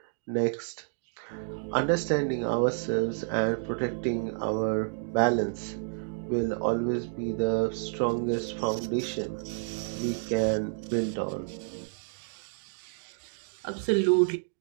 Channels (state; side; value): silent; left; digital silence